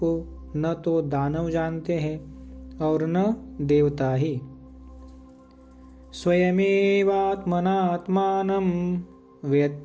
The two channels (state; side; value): identical; both; correlation 1.00